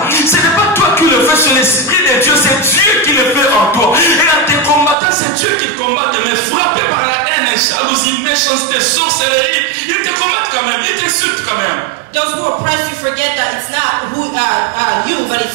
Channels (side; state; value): left; drops out; at 5.0 s